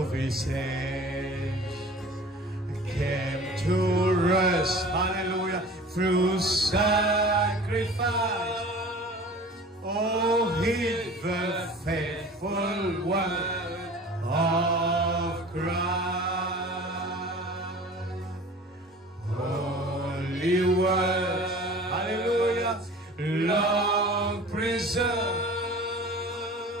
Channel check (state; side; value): normal; both; correlation 0.42